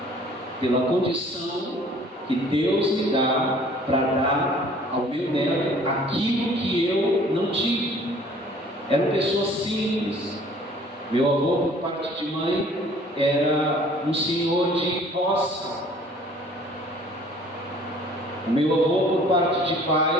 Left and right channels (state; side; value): normal; both; correlation 0.53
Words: Pela condição que Deus me dá para dar ao meu neto aquilo que eu não tive. Eram pessoas simples. Meu avô, por parte de mãe, era um senhor de roça. O meu avô, por parte de